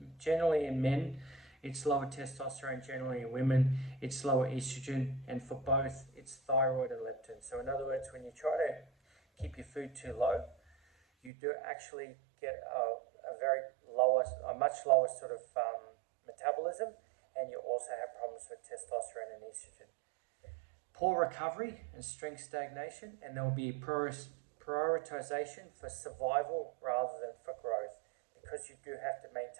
generally in men, it's lower testosterone. Generally in women, it's lower estrogen. And for both, it's thyroid and leptin. So in other words, when you try to keep your food too low, you do actually get a much lower sort of metabolism, and you also have problems with testosterone and estrogen. Poor recovery and strength stagnation, and there will be prioritization for survival rather than for growth, because you do have to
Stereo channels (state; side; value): drops out; left; at 11.3 s